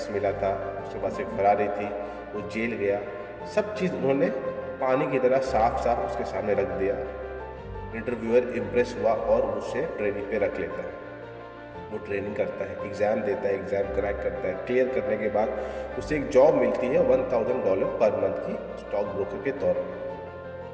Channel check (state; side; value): identical; both; correlation 1.00